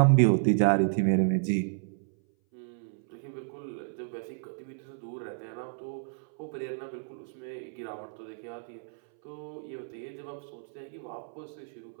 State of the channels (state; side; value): silent; left; 57 dB below the other